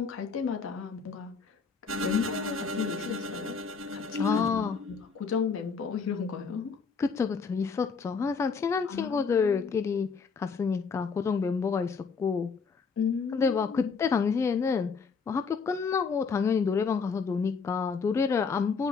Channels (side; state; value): right; quieter; 5.3 dB